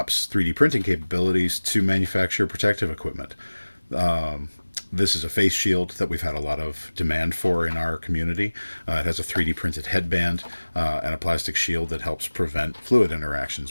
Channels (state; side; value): inverted; both; correlation -1.00